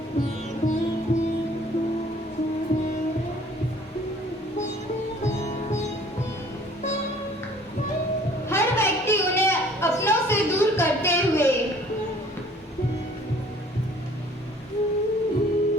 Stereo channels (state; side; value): normal; both; correlation 0.54